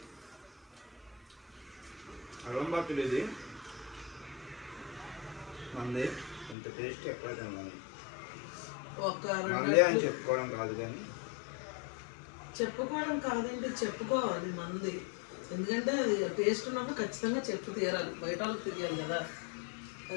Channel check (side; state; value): right; drops out; at 6.6 s